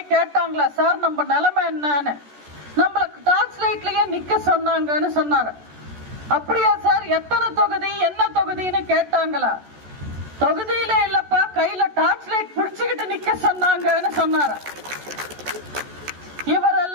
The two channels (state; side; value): late; left; 14 ms